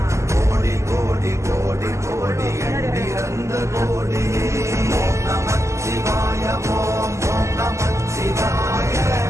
கோடி கோடி கோடி கோடி எண்ணிறந்த கோடியே ஓம் நமச்சிவாய ஓம் ஓம் நமச்சிவாய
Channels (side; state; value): left; late; 0.14 ms